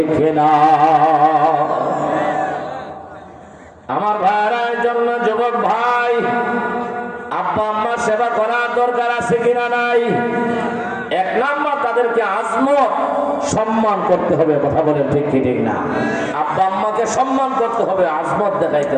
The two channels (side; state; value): both; identical; correlation 1.00